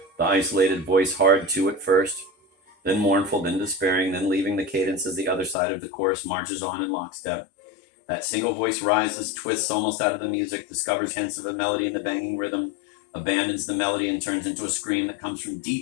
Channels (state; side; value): drops out; right; at 5.6 s